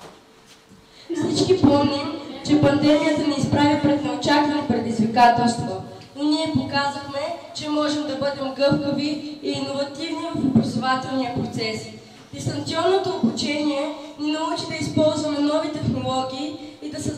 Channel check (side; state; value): both; identical; correlation 1.00